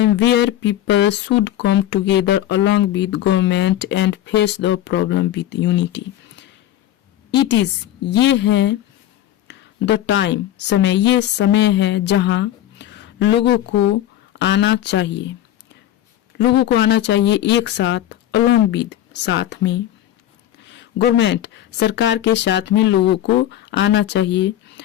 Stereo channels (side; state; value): right; quieter; 12.5 dB